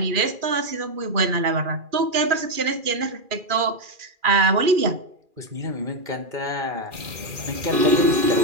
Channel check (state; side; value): late; left; 2.4 ms